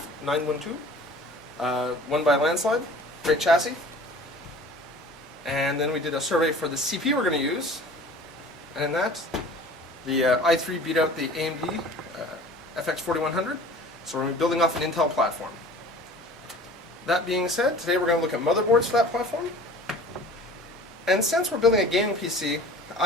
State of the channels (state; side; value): normal; both; correlation 0.44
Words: 912, won by a landslide. Great chassis. And then we did a survey for the CPU we're going to use, and in that, the i3 beat out the AMD FX 4100, so we're going to be building off an Intel platform. That being said, today we're going to look at motherboards for that platform. And since we're building a gaming PC,